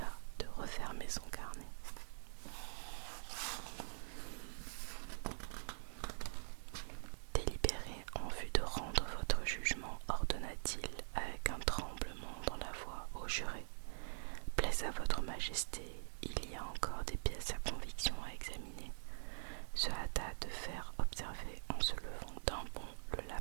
de refermer son carnet. Délibérez en vue de rendre votre jugement, ordonna-t-il avec un tremblement dans la voix au juré. Plaise à votre majesté, il y a encore des pièces à conviction à examiner, se hâta de faire observer en se levant d'un bond le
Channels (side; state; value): left; silent; digital silence